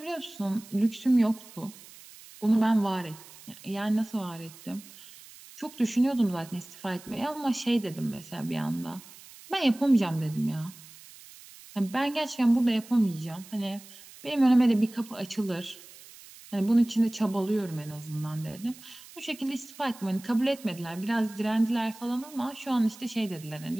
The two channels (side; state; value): right; noise; hiss, 20 dB below the sound